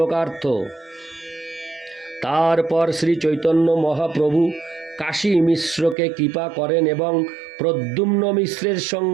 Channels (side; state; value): left; drops out; at 6.0 s